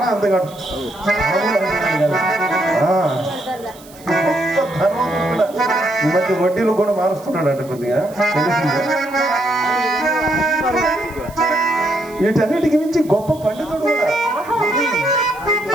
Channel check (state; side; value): noise; right; hiss, 23 dB below the sound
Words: అందగాడు. ఈ మధ్య వడ్డీలు కూడా మారుస్తున్నాడు అంట కొద్దిగా. వీటన్నిటికి మించి గొప్ప పండితుడు కూడా.